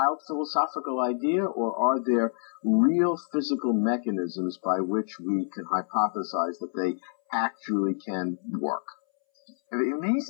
philosophical idea, or are there real physical mechanisms by which we can hypothesize that they actually can work? The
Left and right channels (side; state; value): right; silent; 60 dB below the other